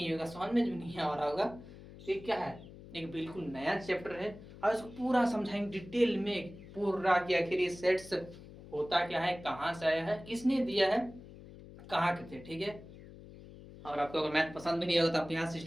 होगा, समझ में भी नहीं आ रहा होगा, तो ये क्या है, एक बिल्कुल नया चैप्टर है और इसको पूरा समझाएंगे डिटेल में पूरा कि आखिर ये सेट्स होता क्या है, कहाँ से आया है, किसने दिया है, कहाँ के थे, ठीक है। और आपको अगर मैथ पसंद भी नहीं होगा तो आप यहाँ से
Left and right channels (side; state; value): left; noise; hum, 17 dB below the sound